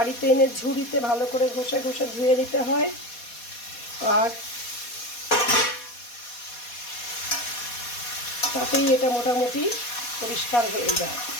এনে ঝুড়িতে ভালো করে ঘষে ঘষে ধুয়ে নিতে হয়, আর তাতেই এটা মোটামুটি পরিষ্কার হয়ে যায়।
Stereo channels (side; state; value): right; late; 4.2 ms